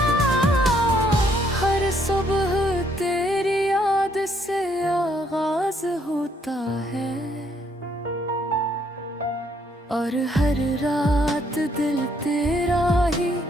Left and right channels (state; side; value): normal; both; correlation 0.69